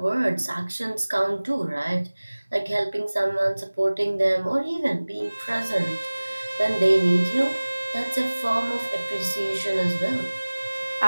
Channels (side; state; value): both; inverted; correlation -1.00